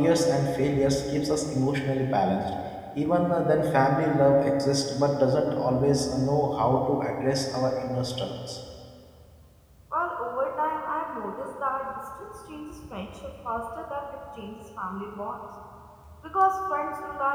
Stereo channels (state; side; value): identical; both; correlation 1.00